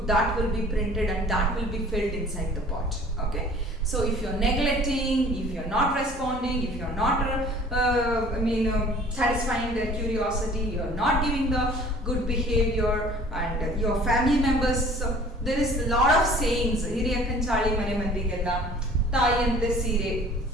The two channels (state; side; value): normal; both; correlation 0.50